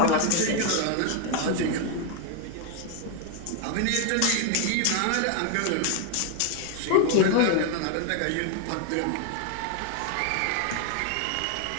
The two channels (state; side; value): different; both; correlation 0.01